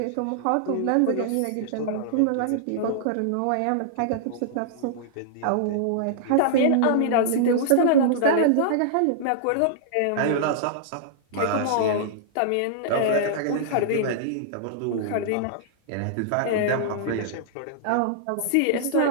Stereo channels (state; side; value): different; both; correlation -0.02